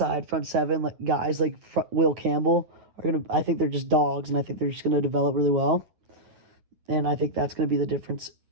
front seven like guys like Will Campbell are going to. I think they're just dogs, and I think they're just going to develop really well. And I think that's going to be the difference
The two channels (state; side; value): late; left; 9.5 ms